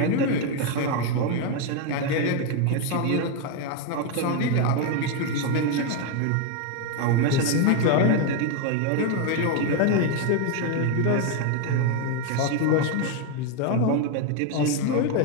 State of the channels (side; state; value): both; different; correlation 0.01